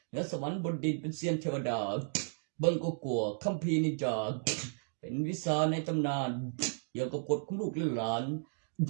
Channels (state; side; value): silent; left; digital silence